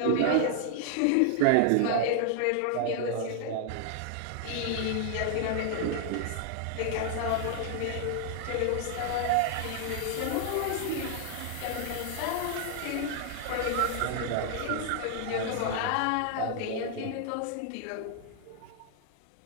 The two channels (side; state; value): both; different; correlation 0.00